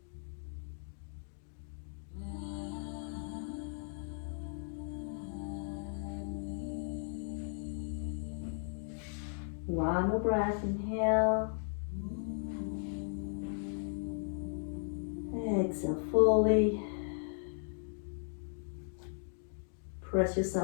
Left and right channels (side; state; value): right; silent; digital silence